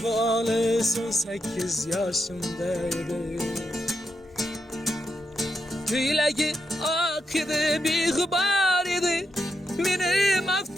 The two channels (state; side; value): normal; both; correlation 0.84